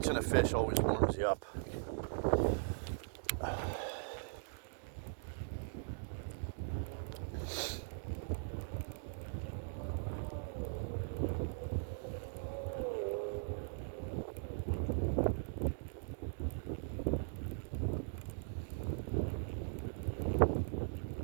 a fish always warms you up.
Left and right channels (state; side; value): silent; left; digital silence